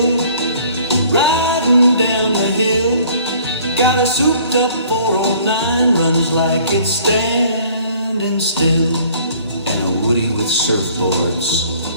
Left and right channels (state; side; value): inverted; both; correlation -0.55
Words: riding down the hill. Got a souped-up 409, runs like it's standing still. And a Woody with surfboards,